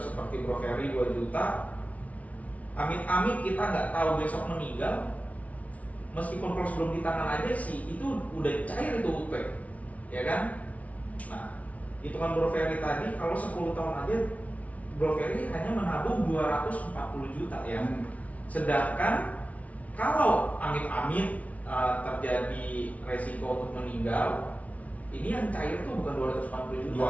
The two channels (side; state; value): right; late; 0.068 ms